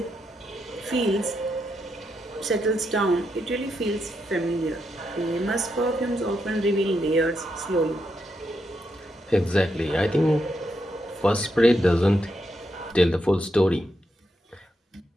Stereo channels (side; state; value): both; normal; correlation 0.82